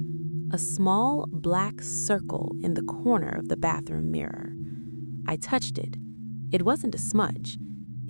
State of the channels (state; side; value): inverted; both; correlation -1.00